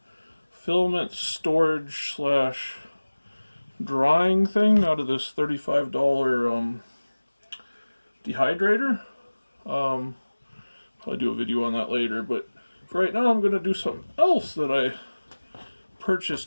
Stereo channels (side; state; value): both; inverted; correlation -1.00